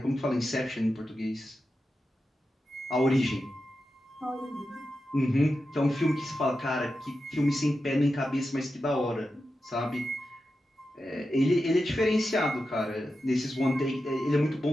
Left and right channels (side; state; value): both; normal; correlation 0.90